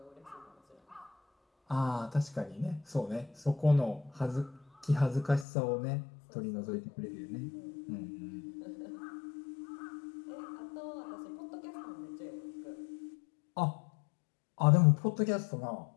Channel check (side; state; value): right; drops out; at 5.5 s